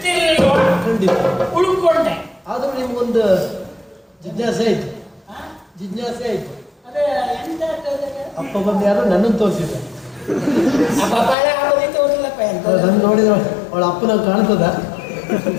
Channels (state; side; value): drops out; right; at 11.4 s